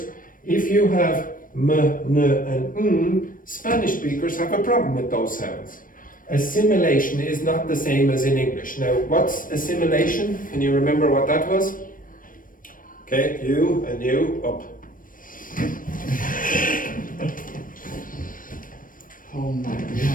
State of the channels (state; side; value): late; right; 0.40 ms